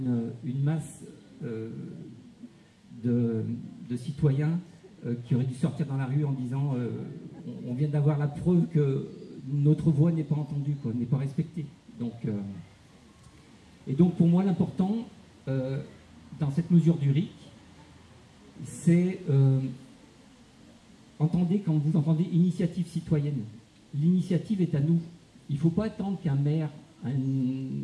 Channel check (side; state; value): both; identical; correlation 1.00